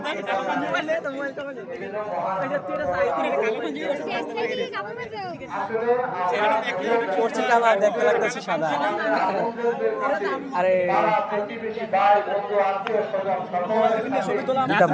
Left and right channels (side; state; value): both; identical; correlation 1.00